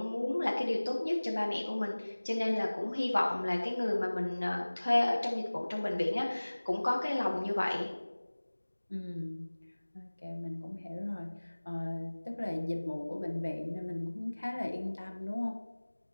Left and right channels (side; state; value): both; inverted; correlation -1.00